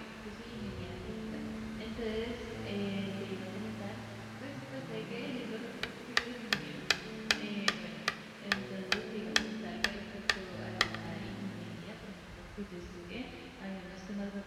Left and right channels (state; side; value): identical; both; correlation 1.00